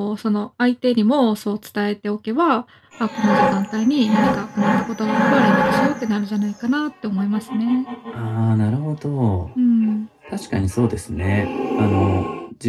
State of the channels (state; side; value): identical; both; correlation 1.00